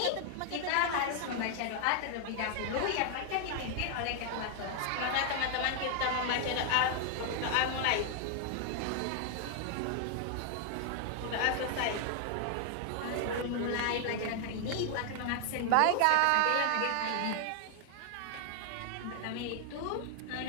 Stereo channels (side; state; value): both; different; correlation 0.00